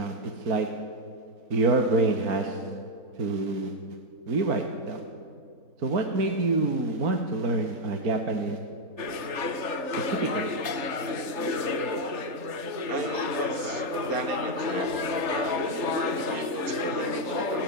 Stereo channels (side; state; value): left; late; 3.4 ms